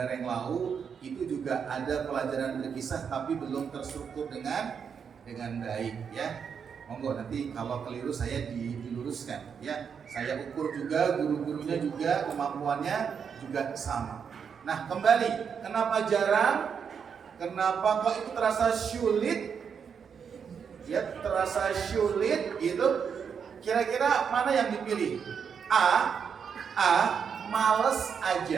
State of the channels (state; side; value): quieter; left; 6.8 dB